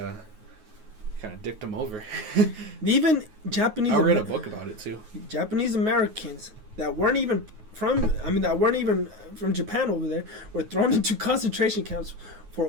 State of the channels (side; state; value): left; late; 9.4 ms